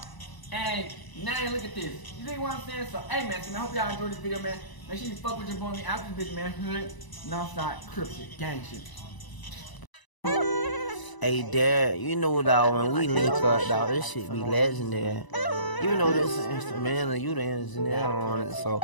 and now look at this. You think what I'm saying? So, hey, man, I hope y'all enjoyed this video, man. Make sure you fuck with your boy, me after this bitch, man. Hood, Northside, Crip shit, gang shit. Hey, Dad, you know, dog, when we link up, dog, this shit be legendary. You know this instrumental, you the engineer on it, so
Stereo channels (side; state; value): right; late; 1.0 ms